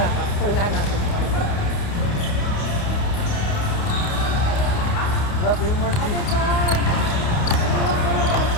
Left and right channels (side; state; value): right; late; 30 ms